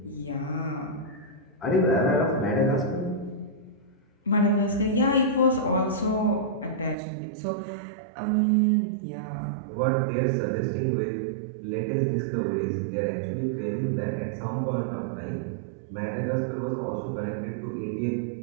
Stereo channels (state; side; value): drops out; left; at 7.0 s